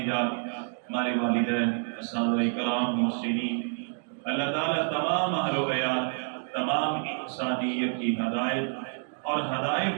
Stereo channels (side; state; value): left; silent; 59 dB below the other